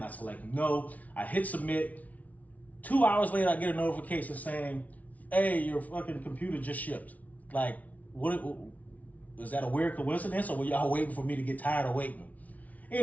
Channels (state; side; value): late; right; 0.071 ms